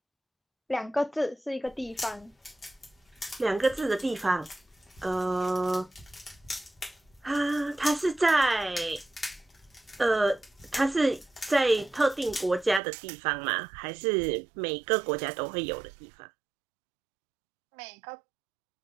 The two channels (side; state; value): left; drops out; at 12.8 s